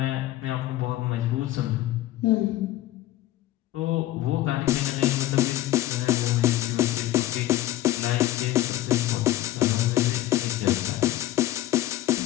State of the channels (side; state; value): right; quieter; 14.8 dB